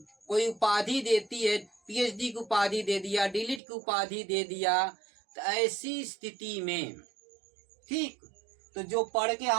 कोई उपाधि देती है, पीएचडी की उपाधि दे दिया, डीलिट की उपाधि दे दिया, तो ऐसी स्थिति में ठीक, तो जो पढ़ के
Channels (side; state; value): left; drops out; at 3.6 s